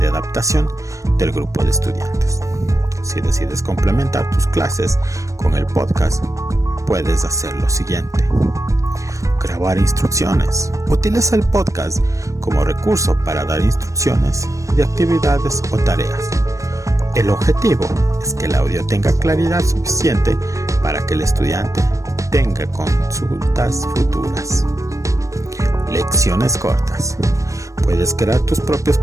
adaptación del grupo de estudiantes. Si decides complementar tus clases con el podcast, puedes hacer lo siguiente: grabar instrucciones. Utiliza el podcast como recurso para dar instrucciones de actividades o tareas. El objetivo es que el audio tenga claridad suficiente para que el estudiante tenga consultas futuras. Lecciones cortas. Puedes crear tus propios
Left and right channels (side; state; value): left; late; 0.15 ms